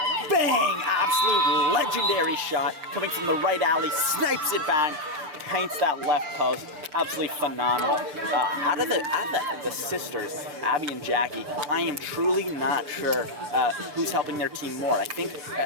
Bang! Absolute legendary shot coming from the right alley. Snipes it back. Paints that left post. Absolutely phenomenal. Out of the sisters, Abby and Jackie, I am truly not sure who's helping their team more. I think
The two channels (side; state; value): left; late; 6.7 ms